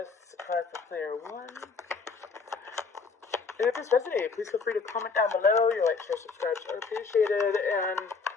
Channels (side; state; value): right; quieter; 4.8 dB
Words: A card for player 1. And if this resonated, please feel free to comment down below. Your like, share, subscribe are appreciated. And